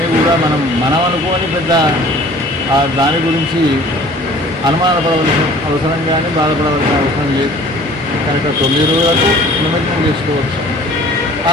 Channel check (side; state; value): both; normal; correlation 0.49